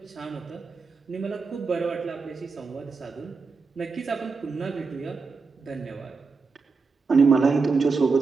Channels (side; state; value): left; quieter; 4.6 dB